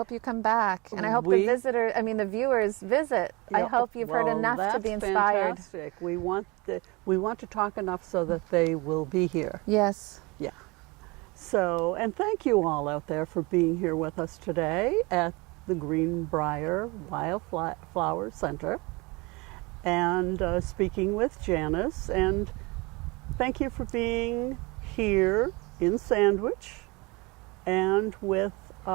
you come back. And I hope the viewers visit. I Yeah, hope you've heard well, enough to be that's inspired. Fantastic. We want to talk enough so that they will be here. Yes. Yeah. So, and thank you all out there for being here with us today at the Green Briar Wildflower Center, and speaking with Janice. And thank you for being here in Sandwich, and with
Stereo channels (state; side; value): quieter; left; 25.6 dB